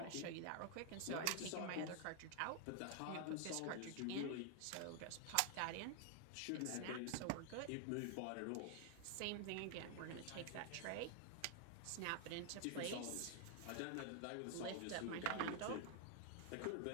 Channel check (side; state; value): both; different; correlation 0.00